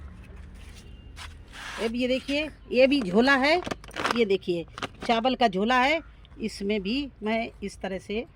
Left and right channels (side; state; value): both; identical; correlation 1.00